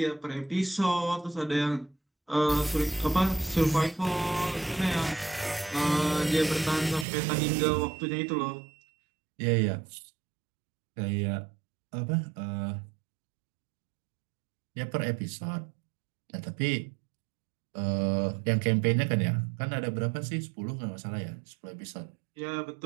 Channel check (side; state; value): left; drops out; at 7.1 s